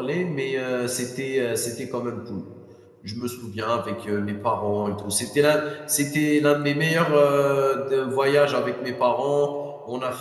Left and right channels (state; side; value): identical; both; correlation 1.00